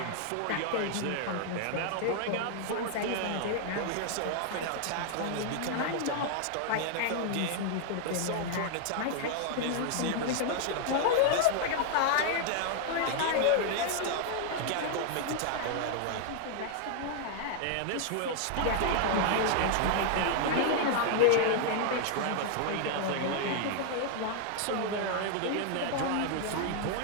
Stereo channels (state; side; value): different; both; correlation 0.00